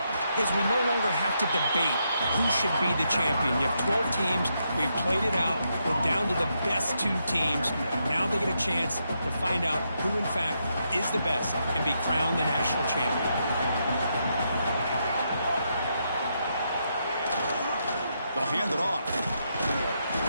is we no longer have to debate who should be the champion. You have 12 teams. We've played it out. We're down to the best two teams. Now they get a chance to find out who, in fact, is the best and be crowned the national champion. They'll hand it off.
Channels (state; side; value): inverted; both; correlation -0.80